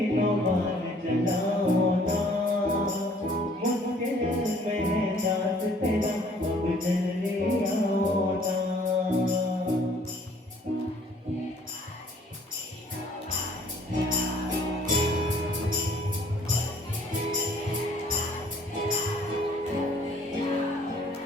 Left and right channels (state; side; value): normal; both; correlation 0.58